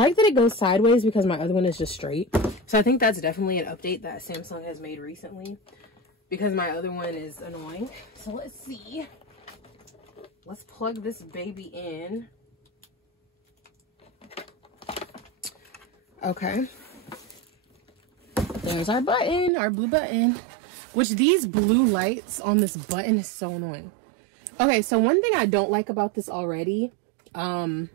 that it goes sideways because my other one is just straight. So I think that's definitely an update that Samsung has made recently because my other one is annoying. So let's see. Let's plug this baby in. Okay. There's our button, our blue button. Which these blue lights on this button is so annoying. Okay, so one thing I don't like about this already, and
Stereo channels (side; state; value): left; drops out; at 19.5 s